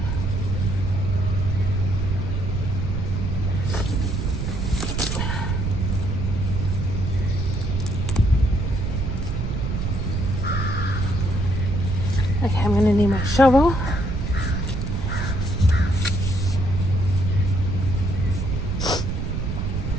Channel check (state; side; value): noise; right; rumble, 1 dB below the sound